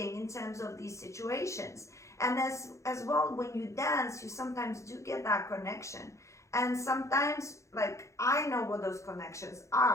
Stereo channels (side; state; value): right; late; 0.15 ms